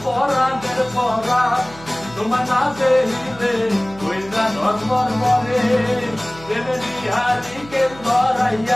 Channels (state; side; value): noise; right; hum, 20 dB below the sound